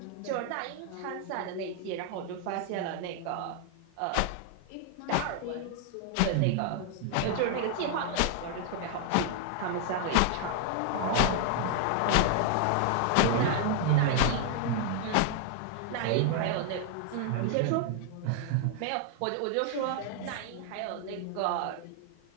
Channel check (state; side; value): different; both; correlation 0.00